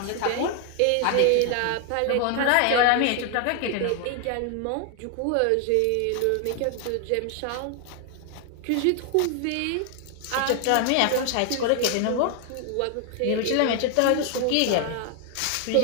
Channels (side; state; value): both; different; correlation 0.00